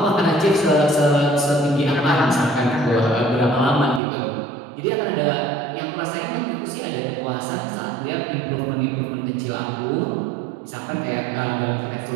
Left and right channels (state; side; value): drops out; left; at 4.0 s